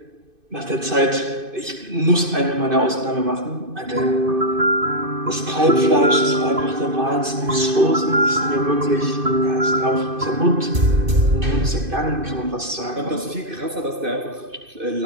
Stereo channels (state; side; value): late; left; 2.5 ms